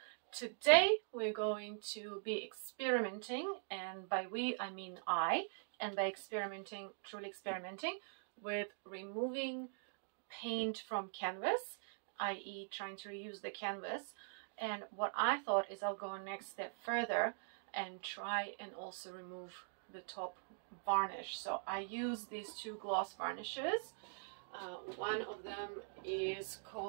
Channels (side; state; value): left; silent; digital silence